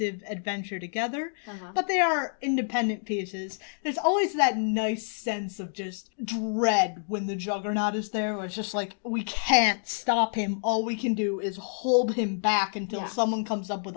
adventure together, but they are independent pieces. There's always that nice sense of just dread when the Juggernaut is there, where it's just like, we can't stop him. All we can do is hold him back until someone comes up with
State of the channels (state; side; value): silent; right; digital silence